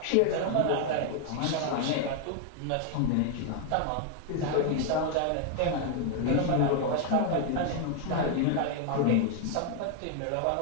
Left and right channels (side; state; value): both; different; correlation 0.00